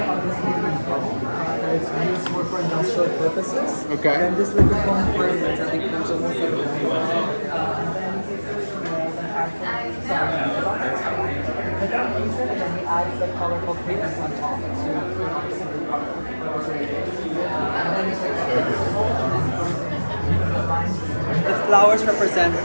it's used more for industrial purposes. Okay. And this liquid foam fragrance, I think, comes almost like and he adds the colorful pigments on top. The flowers represent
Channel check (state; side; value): inverted; both; correlation -1.00